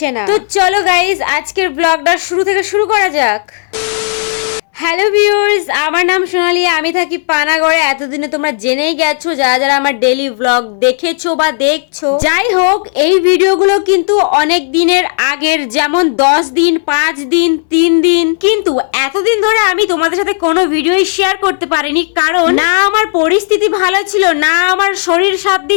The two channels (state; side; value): silent; right; digital silence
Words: না। তো চলো গাইজ, আজকের ব্লগটা শুরু থেকে শুরু করা যাক। হ্যালো ভিউয়ার্স, আমার নাম সোনালি, আমি থাকি পানাগড়ে। এতদিনে তোমরা জেনেই গেছো যারা যারা আমার ডেইলি ব্লগ দেখেছো বা দেখছো। যাই হোক, এই ভিডিওগুলো কিন্তু অনেক দিনের আগের, যেমন 10 দিন, 5 দিন, 3 দিন। কিন্তু এতদিন ধরে আমি তোমাদের সাথে কোনো ভিডিওই শেয়ার করতে পারিনি, কারণ না আমার পরিস্থিতি ভালো ছিল, না আমার শরীর সাথ